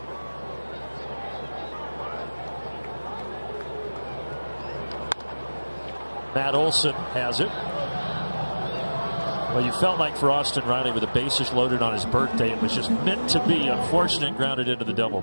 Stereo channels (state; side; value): inverted; both; correlation -1.00